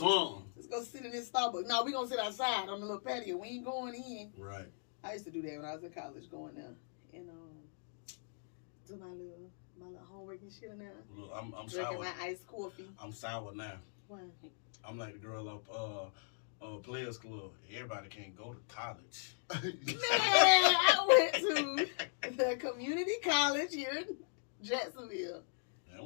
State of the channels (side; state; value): right; silent; digital silence